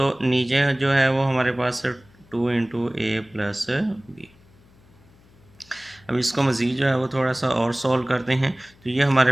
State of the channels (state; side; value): noise; left; hum, 28 dB below the sound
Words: नीचे जो है वो हमारे पास 2 × a + b। अब इसको मज़ीद जो है वो थोड़ा सा और सॉल्व करते हैं। तो ये